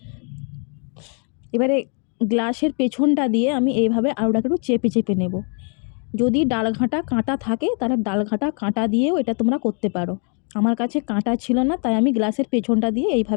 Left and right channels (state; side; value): quieter; right; 40.0 dB